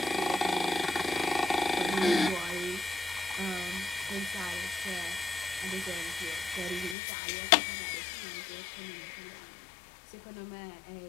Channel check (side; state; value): right; drops out; at 7.0 s